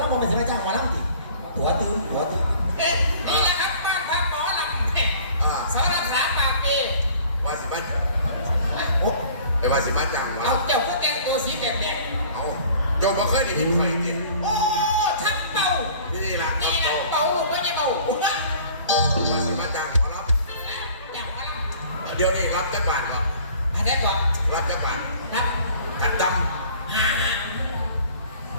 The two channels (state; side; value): inverted; both; correlation -0.50